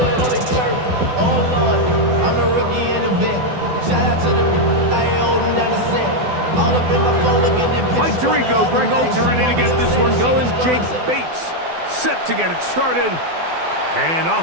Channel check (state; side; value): late; left; 12 ms